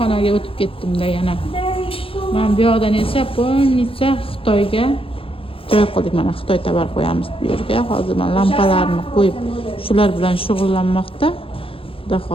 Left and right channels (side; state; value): right; late; 0.27 ms